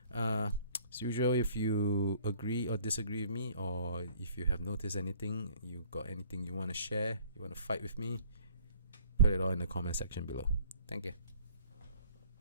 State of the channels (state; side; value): inverted; both; correlation -0.54